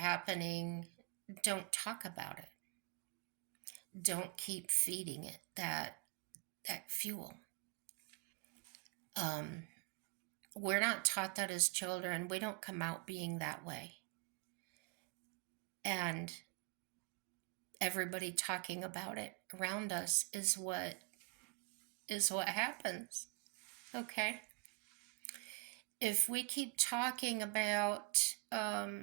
Don't talk about it. Don't keep feeding it that fuel. Um, we're not taught that as children. We don't come out being that way. And everybody talking about it around us is what happens. Okay? If we keep talking about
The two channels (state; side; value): quieter; left; 30.3 dB